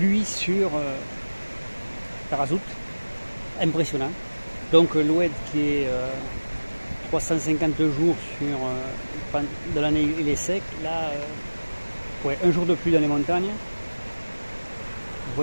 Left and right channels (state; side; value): inverted; both; correlation -1.00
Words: sur Tarazout, impressionnant. Donc l'OED qui est 350 jours sur de l'année, il est sec. Là, ouais, un jour de pluie dans les montagnes. Vous